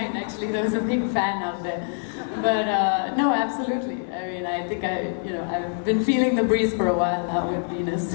actually. There was a big fan out there. But no, absolutely. I mean, I think I've been feeling the breeze for a while now with Venus.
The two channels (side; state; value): right; silent; digital silence